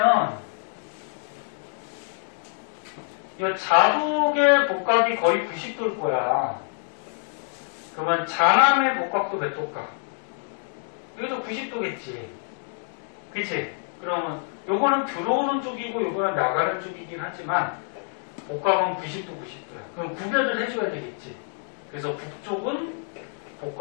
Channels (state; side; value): silent; right; 61 dB below the other